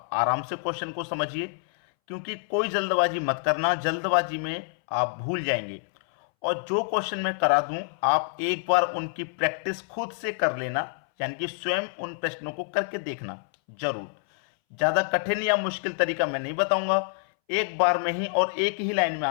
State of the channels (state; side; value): silent; right; 60 dB below the other